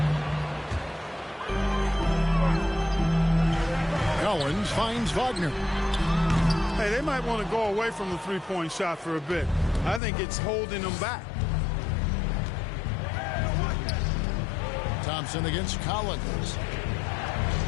Owens finds Wagner. Hey, they might want to go away from the three-point shot for a bit. I think it's holding them back. Thompson against Collins.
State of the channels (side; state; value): right; drops out; at 10.0 s